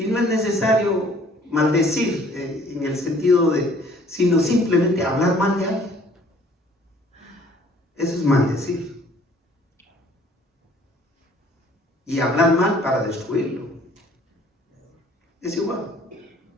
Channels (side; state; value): both; normal; correlation 0.57